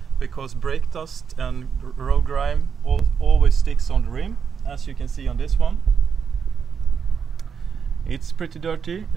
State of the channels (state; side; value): quieter; left; 6.7 dB